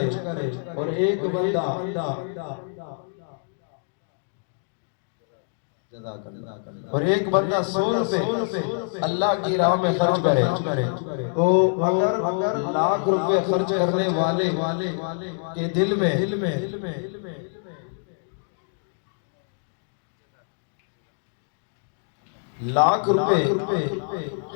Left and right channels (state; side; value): silent; right; 61 dB below the other